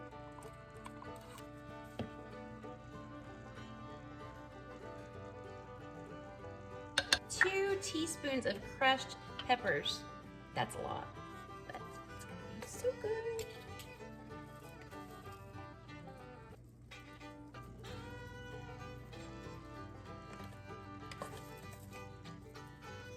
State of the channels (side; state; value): both; identical; correlation 1.00